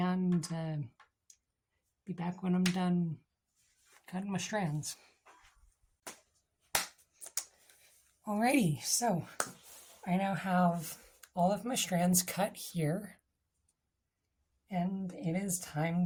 be back when I'm done cutting my strands. Alrighty, so I now have all of my strands cut here, and it is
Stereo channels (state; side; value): identical; both; correlation 1.00